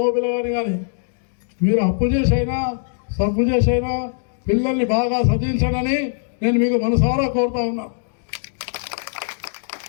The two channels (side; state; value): right; silent; digital silence